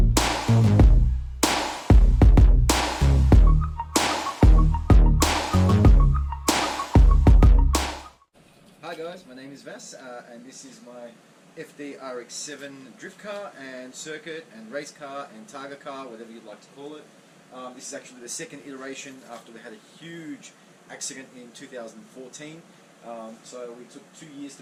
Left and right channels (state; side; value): identical; both; correlation 1.00